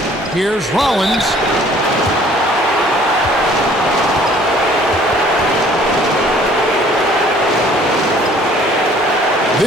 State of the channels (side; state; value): both; normal; correlation 0.55